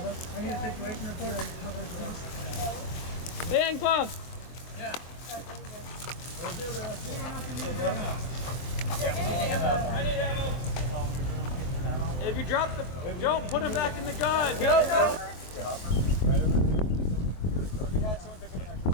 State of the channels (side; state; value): right; late; 23 ms